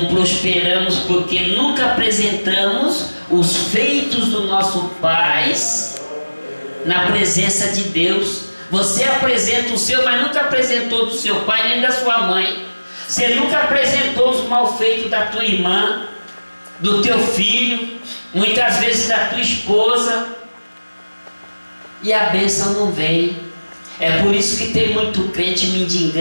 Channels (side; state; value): both; inverted; correlation -1.00